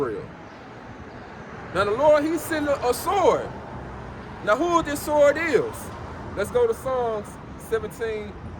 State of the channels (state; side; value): identical; both; correlation 1.00